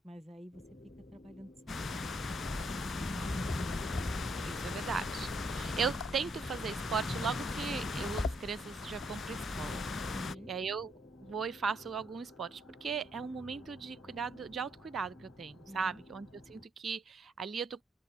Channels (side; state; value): both; normal; correlation 0.73